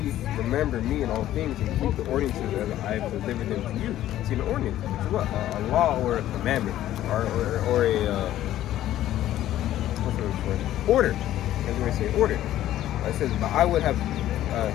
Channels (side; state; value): right; quieter; 13.1 dB